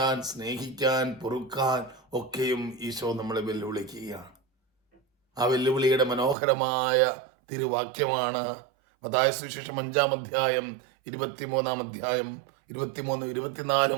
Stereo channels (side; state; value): left; drops out; at 6.4 s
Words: സ്നേഹിക്കാൻ, പൊറുക്കാൻ ഒക്കെയും ഈശോ നമ്മളെ വെല്ലുവിളിക്കുകയാണ്. ആ വെല്ലുവിളിയുടെ മനോഹരമായ തിരുവാക്യമാണ് മത്തായി സുവിശേഷം 5-ാം അധ്യായം 23-ാം അധ്യായം